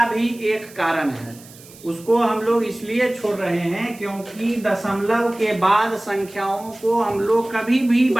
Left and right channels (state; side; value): noise; right; hiss, 21 dB below the sound